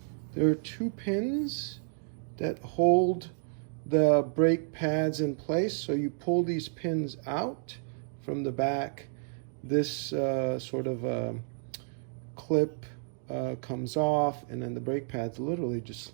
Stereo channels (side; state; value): left; silent; digital silence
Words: There are two pins that hold the brake pads in place. So you pull these pins out from the back. This sort of clip comes off, and then the brake pads literally just